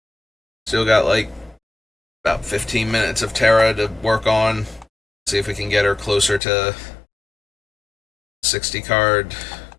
Still got like about 15 minutes of Terra to work on. See if we can get her closer to 60 card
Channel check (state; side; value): drops out; right; at 6.4 s